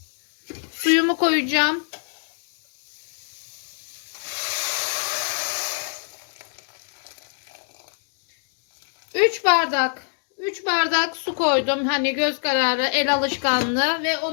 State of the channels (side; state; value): right; silent; digital silence